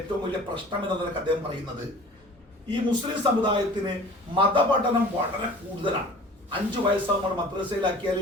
വലിയ പ്രശ്നം എന്ന നിലക്ക് അദ്ദേഹം പറയുന്നത്, ഈ മുസ്ലിം സമുദായത്തിന് മതപഠനം വളരെ കൂടുതലാണ്. 5 വയസ്സാകുമ്പോൾ മദ്രസയിലാക്കിയാൽ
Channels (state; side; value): normal; both; correlation 0.44